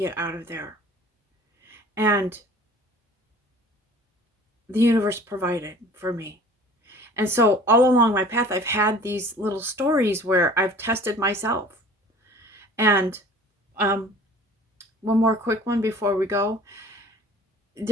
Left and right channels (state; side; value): normal; both; correlation 0.47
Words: out of there. And the universe provided for me. And so all along my path, I've had these little stories where I've tested myself. And one more quick one before we go.